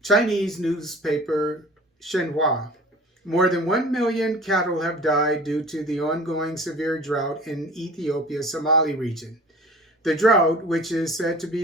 Chinese newspaper Xinhua. More than 1 million cattle have died due to the ongoing severe drought in Ethiopia's Somali region. The drought, which is said to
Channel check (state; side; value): normal; both; correlation 0.43